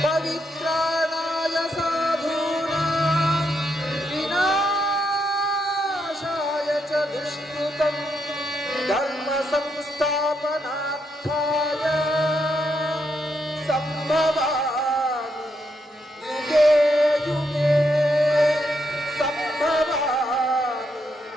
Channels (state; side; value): normal; both; correlation 0.79